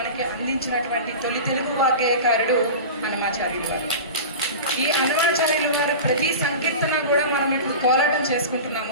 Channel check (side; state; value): both; inverted; correlation -0.31